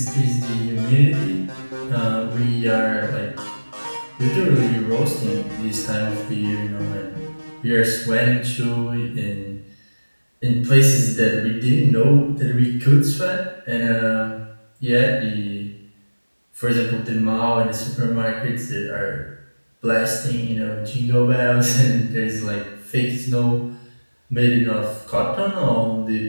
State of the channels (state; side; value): inverted; both; correlation -1.00